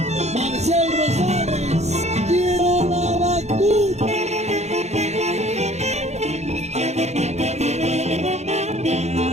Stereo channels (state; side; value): late; left; 0.32 ms